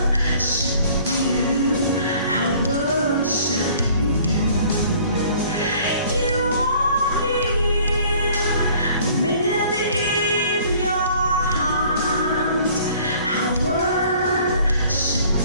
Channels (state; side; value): inverted; both; correlation -0.54